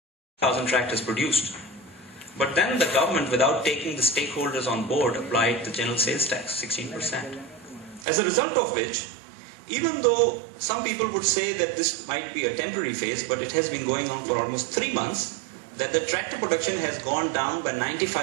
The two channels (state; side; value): drops out; left; at 8.1 s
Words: 1,000 tractors produced. But then the government, without taking the stakeholders on board, applied the general sales tax, 16%. As a result of which, even though some people would say that this might be a temporary phase, but it has been going on for almost 3 months, that the tractor production has gone down by